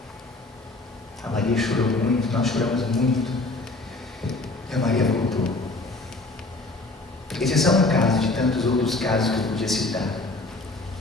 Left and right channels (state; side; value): quieter; right; 3.1 dB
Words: A Maria chorou muito, nós choramos muito. E a Maria voltou. Esse é só um caso de tantos outros casos que eu podia citar.